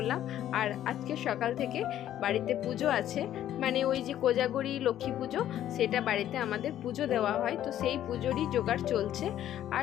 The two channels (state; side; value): quieter; right; 11.8 dB